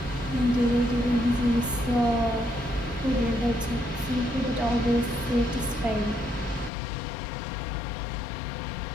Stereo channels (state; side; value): drops out; right; at 6.7 s